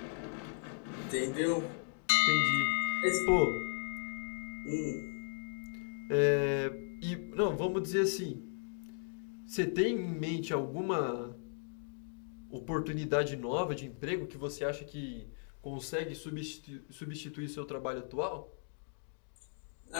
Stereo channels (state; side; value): silent; right; digital silence